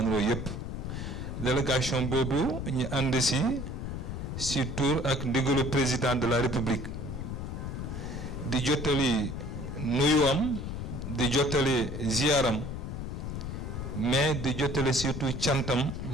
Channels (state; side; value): noise; left; rumble, 5 dB below the sound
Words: yépp. Délégation boobu ñu ànd ci tour ak ndigalu président de la République di jottali nuyuwam, di jottali ziaram, mais di jottali surtout cantam